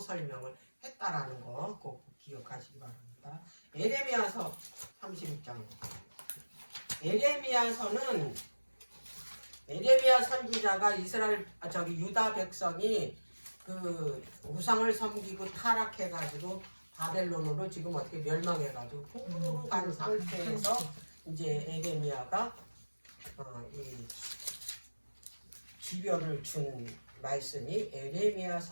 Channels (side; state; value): both; inverted; correlation -1.00